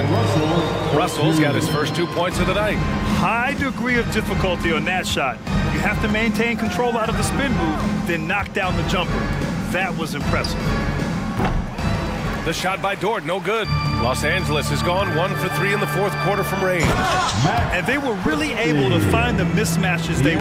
Russell's got his first 2 points of the night. High degree of difficulty on that shot. You have to maintain control out of the spin move, then knock down the jumper. That was impressive. The shot by Dort, no good. Los Angeles has gone 1 for 3 in the fourth quarter from range. And they were really able to find the mismatches they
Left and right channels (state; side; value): identical; both; correlation 1.00